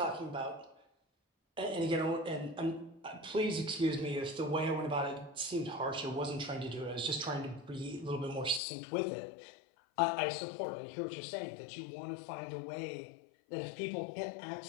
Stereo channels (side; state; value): right; drops out; at 8.6 s